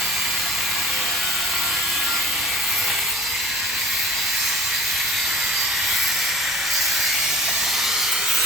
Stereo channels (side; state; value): both; normal; correlation 0.44